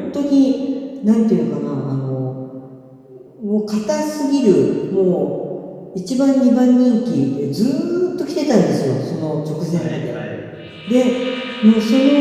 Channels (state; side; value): identical; both; correlation 1.00